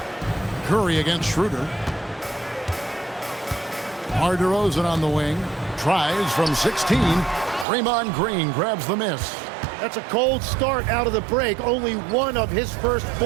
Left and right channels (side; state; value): left; drops out; at 7.7 s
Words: Curry against Schroeder. DeRozan on the wing. Tries from 16. Draymond Green grabs the miss. That's a cold start out of the break. Only 1 of his first